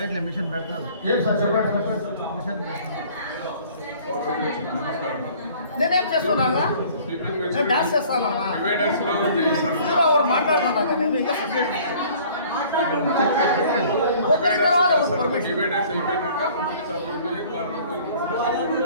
మిషన్ పెడతారు. ఏం సార్ చెప్పండి. మిషన్ నేనేం చేస్తున్నాగా, నేను డాన్స్ చేస్తానా, ఎవరు మాట్లాడుతున్నాగా, నేను ఇంకా సబ్జెక్ట్ ఒకరి తర్వాత పర్మిషన్.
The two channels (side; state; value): both; inverted; correlation -0.52